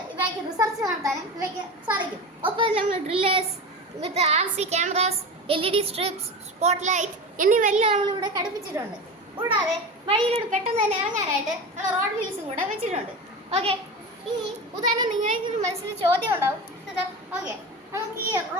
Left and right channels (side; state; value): both; normal; correlation 0.27